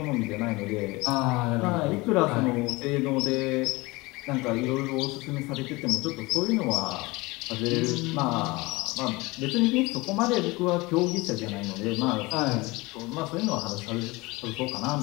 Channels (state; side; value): quieter; right; 23.0 dB